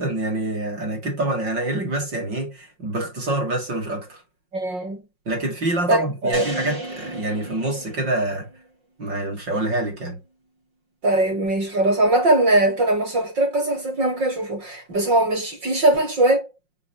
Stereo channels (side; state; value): left; late; 5.6 ms